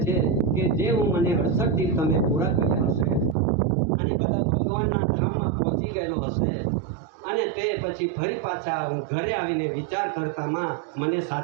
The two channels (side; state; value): left; drops out; at 3.4 s